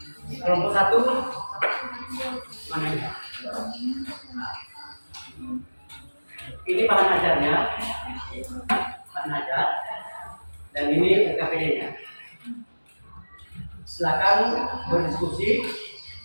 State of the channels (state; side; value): inverted; both; correlation -1.00